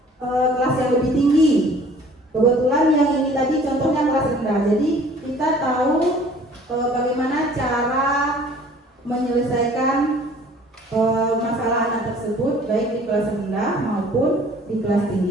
yang lebih tinggi. Kebetulan yang ini tadi contohnya kelas rendah. Jadi kita tahu bagaimana cara menyelesaikan masalah anak tersebut baik di kelas rendah maupun di kelas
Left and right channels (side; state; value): both; normal; correlation 0.52